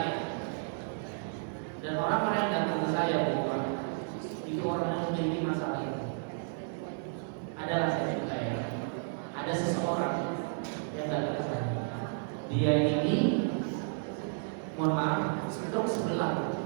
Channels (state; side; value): silent; left; digital silence